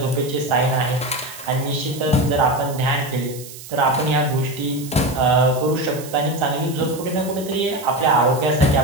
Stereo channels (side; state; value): right; noise; hiss, 15 dB below the sound